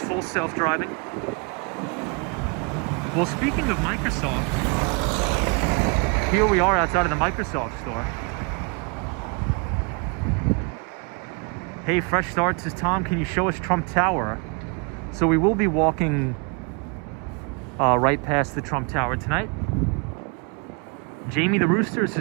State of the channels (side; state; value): left; quieter; 32.8 dB